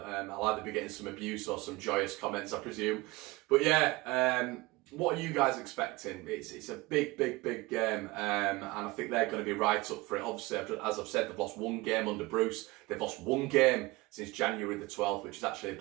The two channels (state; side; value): quieter; left; 21.6 dB